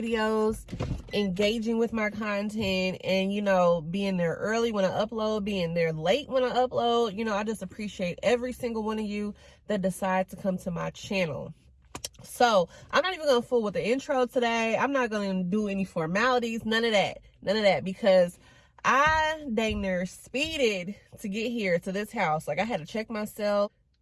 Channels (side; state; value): both; identical; correlation 1.00